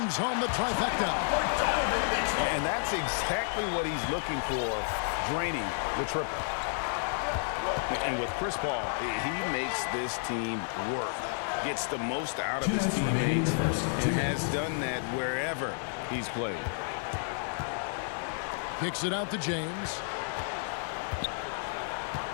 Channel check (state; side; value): silent; right; digital silence